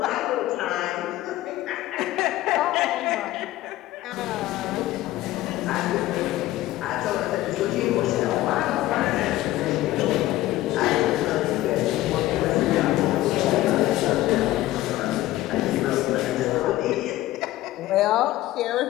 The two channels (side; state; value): right; quieter; 15.9 dB